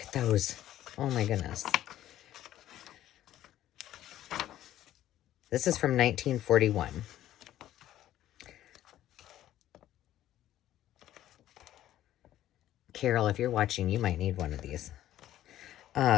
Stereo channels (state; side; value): quieter; right; 12.9 dB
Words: those. Oh, my goodness. This is from 1941. Carol, if you're watching, you might need one of these.